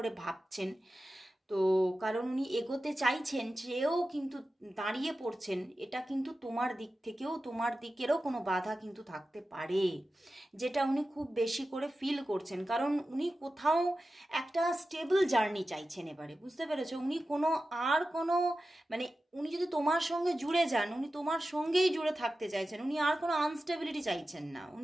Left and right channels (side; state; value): both; normal; correlation 0.93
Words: ভাবছেন। তো কারণ উনি এগোতে চাইছেন, সেও কিন্তু দাঁড়িয়ে পড়ছেন, এটা কিন্তু তোমার দিক থেকেও তোমার দিকেরও কোনো বাধা কিন্তু থাকতে পারে, যেটা উনি খুব বেশি করে ফিল করছেন। কারণ উনি কোথাও একটা স্টেবল জার্নি চাইছেন এবারে, বুঝতে পেরেছো? উনি কোনো মানে উনি যদি তোমার সঙ্গে জুড়ে যান, উনি তোমার সঙ্গেই জুড়ে থাকতে চাইছেন, উনি আর কোনো আনস্টেবিলিটি চাইছেন না,